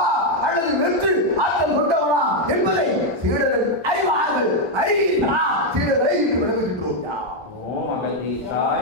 அல்லது வெற்று ஆற்றல் கொண்டவனா என்பதை சீடர்கள் அறிவார்கள். சீடர்களை விளங்குகின்றோம்.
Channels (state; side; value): normal; both; correlation 0.02